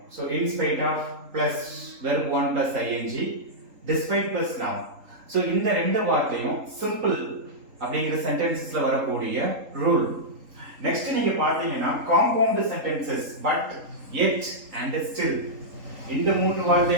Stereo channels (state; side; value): late; left; 3.8 ms